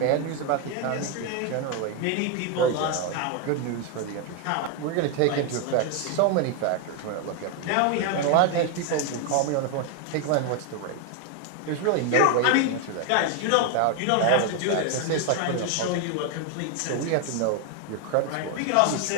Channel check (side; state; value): both; different; correlation 0.01